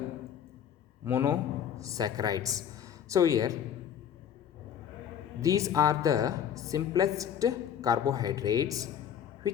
monosaccharides. So here these are the simplest carbohydrates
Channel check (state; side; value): quieter; right; 9.1 dB